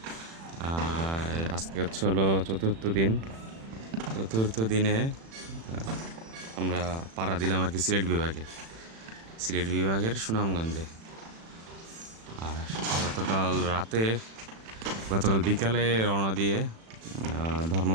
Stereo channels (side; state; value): left; late; 36 ms